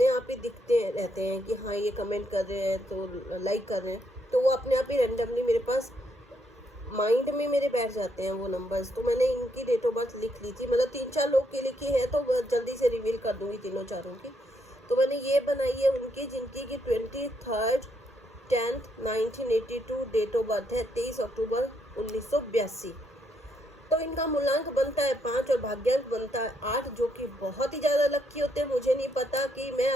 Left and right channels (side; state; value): both; normal; correlation 0.76